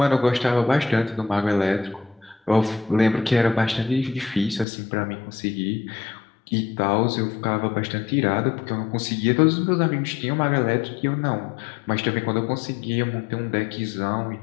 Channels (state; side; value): drops out; right; at 4.7 s